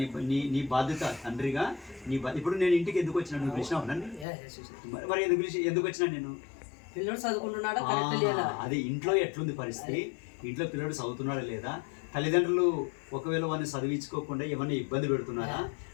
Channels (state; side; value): drops out; right; at 4.2 s